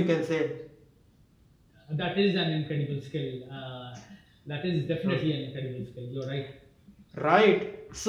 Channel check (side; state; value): both; identical; correlation 1.00